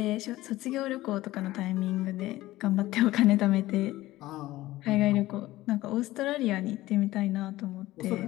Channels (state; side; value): quieter; right; 16.9 dB